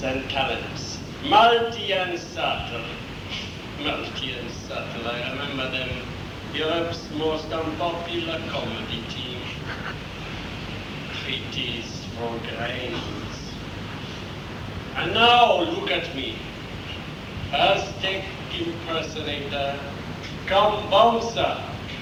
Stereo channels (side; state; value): both; identical; correlation 1.00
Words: and talents, multi and subtle. I remember them, Europe's most unpopular comedy team, treaties for grains. And now look at me, Aztec impersonator, come bouncer